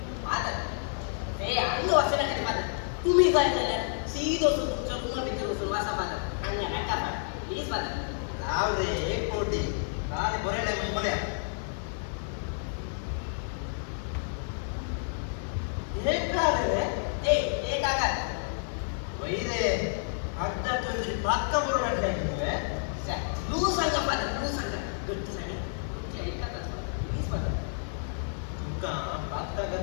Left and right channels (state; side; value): silent; right; digital silence